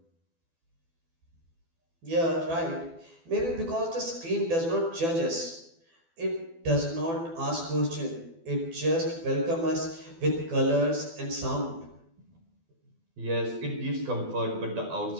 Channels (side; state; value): left; late; 12 ms